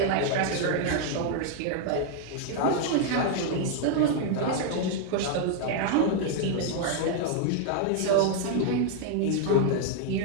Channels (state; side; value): different; both; correlation 0.00